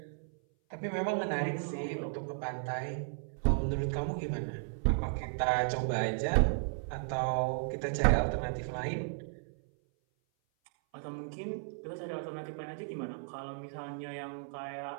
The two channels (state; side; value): silent; left; 55 dB below the other